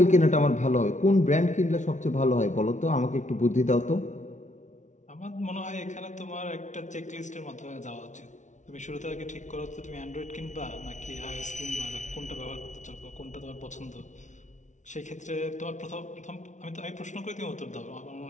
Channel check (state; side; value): late; right; 0.36 ms